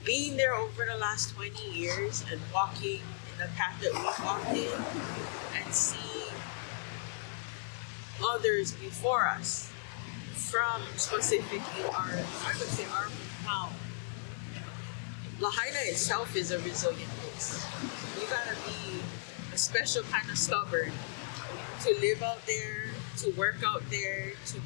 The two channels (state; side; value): silent; right; digital silence